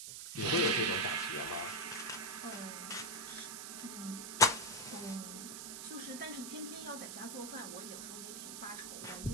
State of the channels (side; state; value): right; noise; hiss, 8 dB below the sound